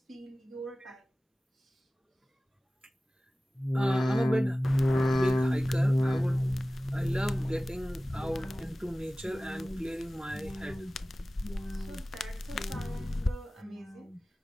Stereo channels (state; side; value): normal; both; correlation 0.97